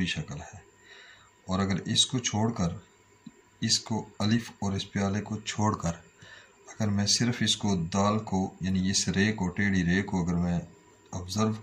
शक्ल है। और अगर इसको छोड़कर, इसको अलिफ और इस प्याले को छोड़कर अगर मैं सिर्फ इसको दाल को यानी इस रे को, टेढ़ी रे को अगर मैं ऑब्ज़र्व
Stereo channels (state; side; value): identical; both; correlation 1.00